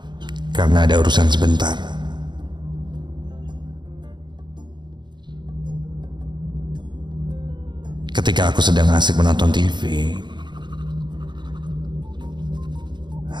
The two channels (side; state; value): left; late; 0.22 ms